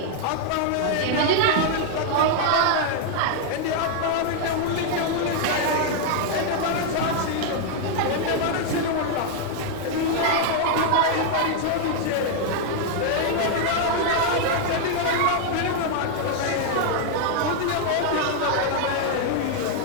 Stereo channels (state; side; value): different; both; correlation 0.00